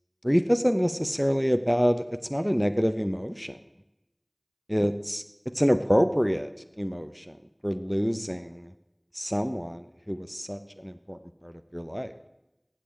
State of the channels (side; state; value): both; identical; correlation 1.00